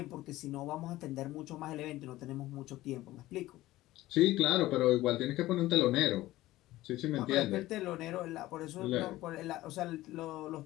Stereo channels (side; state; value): right; quieter; 16.7 dB